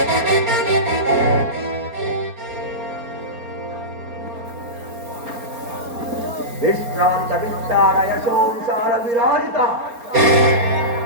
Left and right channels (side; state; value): left; late; 4.3 ms